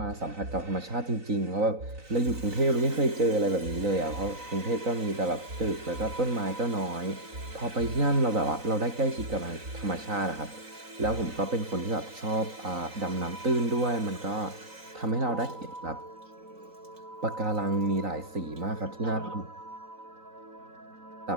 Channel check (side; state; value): left; late; 3.9 ms